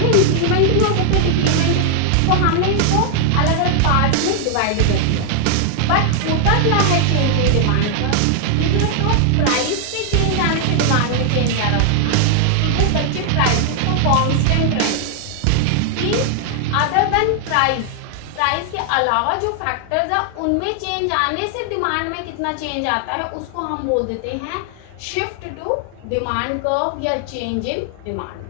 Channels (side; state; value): both; different; correlation 0.00